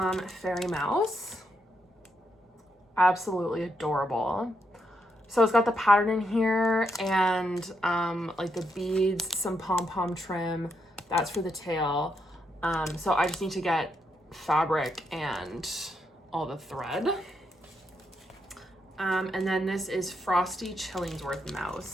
Fairy Mouse. Absolutely adorable. So it's got the pattern in here and like the beads, some pom-pom trim. That's for the tail. So I just need to get fabric and all the thread. And then this is Frosty Chillingsworth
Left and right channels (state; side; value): normal; both; correlation 0.80